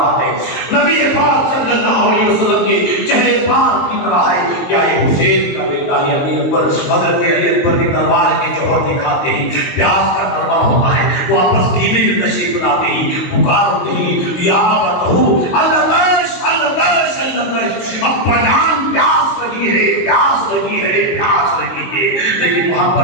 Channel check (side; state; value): right; late; 22 ms